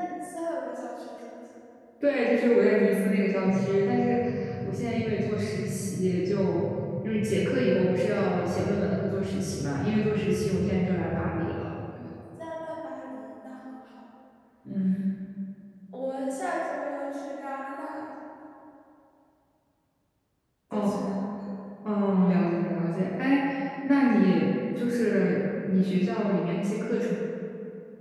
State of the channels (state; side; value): identical; both; correlation 1.00